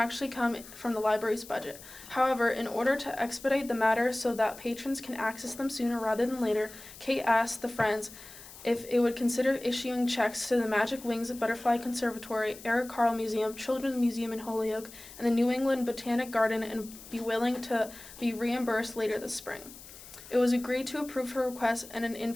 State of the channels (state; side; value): noise; left; hiss, 17 dB below the sound